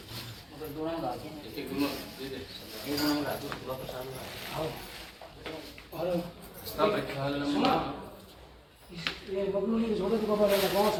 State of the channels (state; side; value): identical; both; correlation 1.00